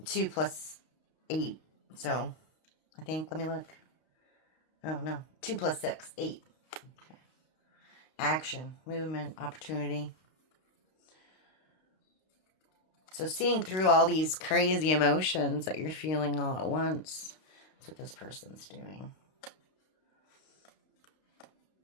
2 plus 8. So, I think, let me look. Oh, no. 2 plus 6, 8. Okay. Action, movement, opportunity. So seeing through all these crazy emotions that you're feeling all at once, that's what this person's doing.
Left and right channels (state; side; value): late; right; 32 ms